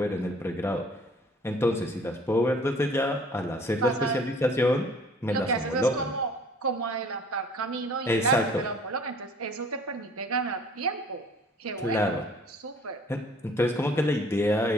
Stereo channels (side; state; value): both; normal; correlation 0.53